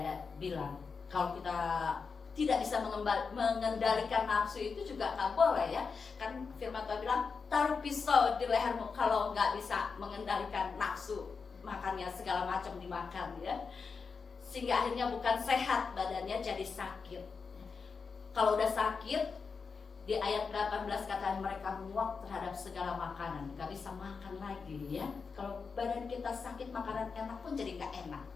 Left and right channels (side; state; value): right; quieter; 5.2 dB